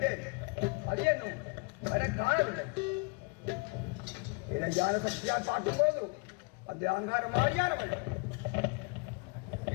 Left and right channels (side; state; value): right; quieter; 29.9 dB